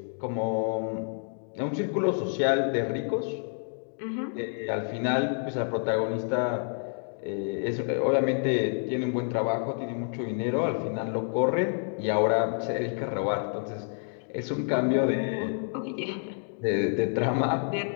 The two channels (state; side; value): silent; right; 59 dB below the other